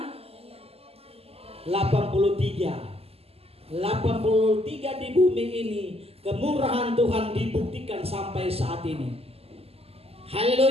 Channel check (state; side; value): late; left; 0.29 ms